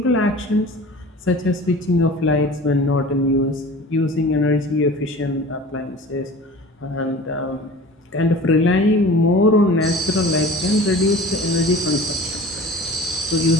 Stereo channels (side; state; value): both; normal; correlation 0.41